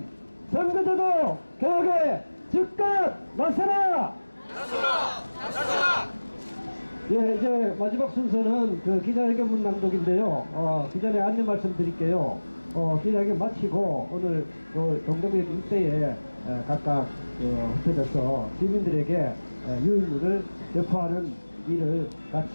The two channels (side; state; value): both; inverted; correlation -1.00